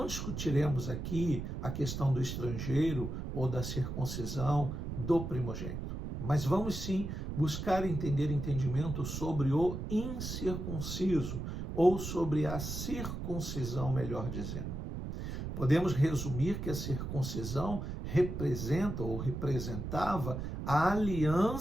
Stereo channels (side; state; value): right; noise; rumble, 5 dB below the sound